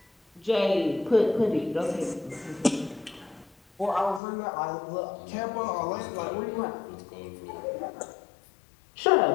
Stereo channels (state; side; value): drops out; right; at 4.2 s